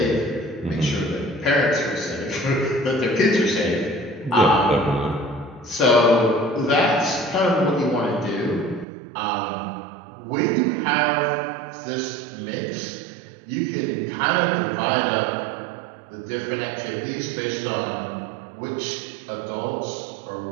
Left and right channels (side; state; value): left; drops out; at 8.8 s